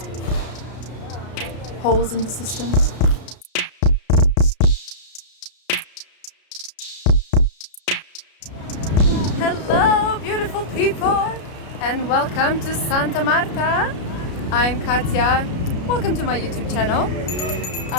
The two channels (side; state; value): right; late; 33 ms